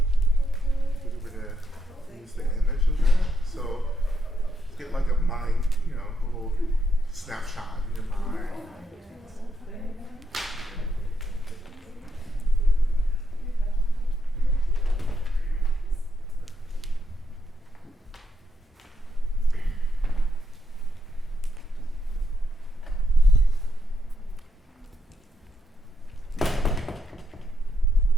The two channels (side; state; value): both; normal; correlation 0.79